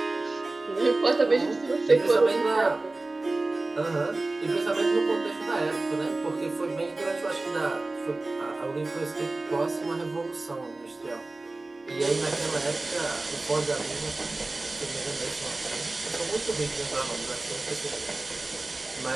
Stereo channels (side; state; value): left; quieter; 3.1 dB